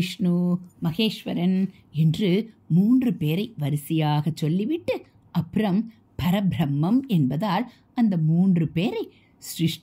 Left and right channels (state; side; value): identical; both; correlation 1.00